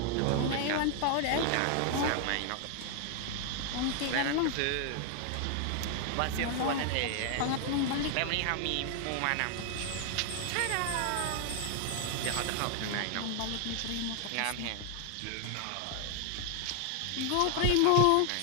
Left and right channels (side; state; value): both; different; correlation 0.00